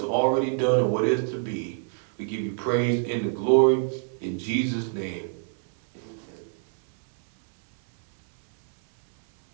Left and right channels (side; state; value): left; silent; 61 dB below the other